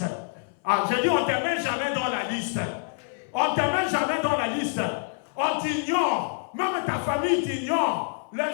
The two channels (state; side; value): silent; right; 58 dB below the other